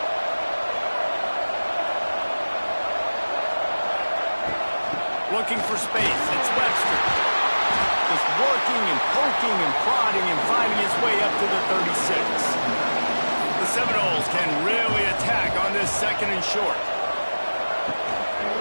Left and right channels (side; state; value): both; inverted; correlation -1.00